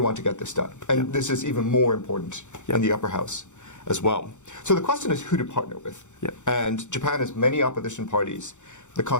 to get this done. And this is even more important in the upper house as well. So the question is who to partner with. And Japan has many opposition parties. The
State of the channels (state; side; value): late; right; 0.85 ms